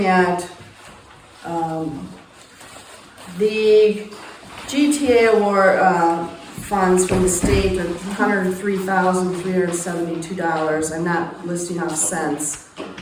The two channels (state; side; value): identical; both; correlation 1.00